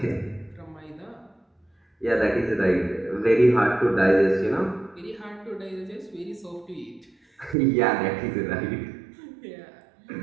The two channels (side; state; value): left; drops out; at 7.6 s